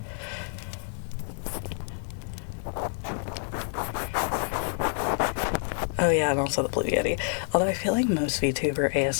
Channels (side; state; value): right; silent; 57 dB below the other